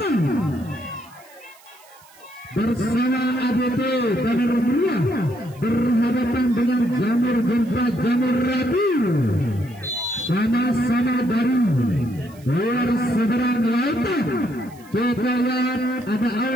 bersama ADT Banar Meriah berhadapan dengan Jamur Jempa Jamur Rabu, sama-sama dari luar seberang lautan. Kita lihat ada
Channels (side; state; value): right; noise; hiss, 26 dB below the sound